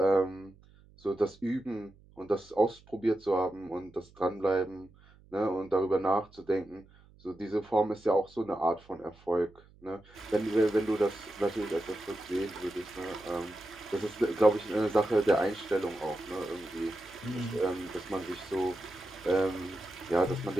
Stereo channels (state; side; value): noise; right; hum, 26 dB below the sound